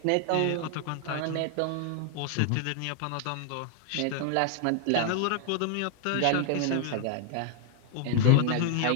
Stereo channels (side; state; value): both; different; correlation 0.00